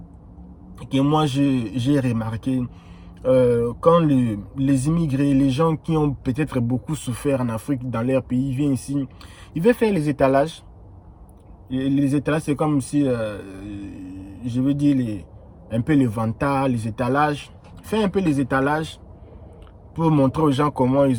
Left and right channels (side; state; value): both; identical; correlation 1.00